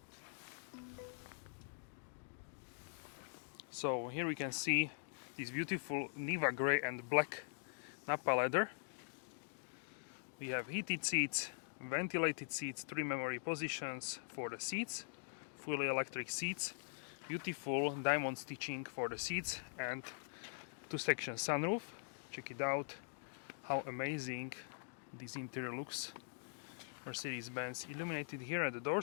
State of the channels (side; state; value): right; silent; digital silence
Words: So here we can see this beautiful Niva grey and black Nappa leather. We have heated seats, ventilated seats, 3 memory positions for the seats, fully electric seats, beautiful diamond stitching for the seats, and 2-section sunroof. Check it out, how amazing this interior looks. Mercedes-Benz illuminated here at the door